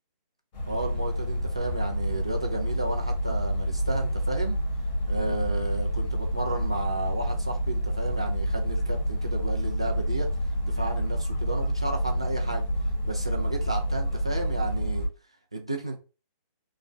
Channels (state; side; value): inverted; both; correlation -0.85